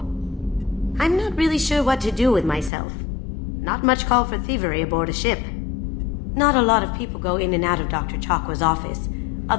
I'm not really sure what to do with myself. Not much call for thievery aboard a ship. Not a lot of people go in and out of Dr. Chakwa's office,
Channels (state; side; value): drops out; right; at 2.7 s